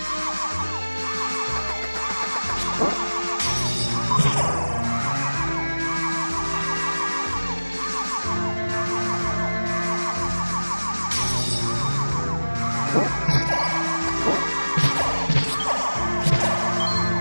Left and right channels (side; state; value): both; inverted; correlation -1.00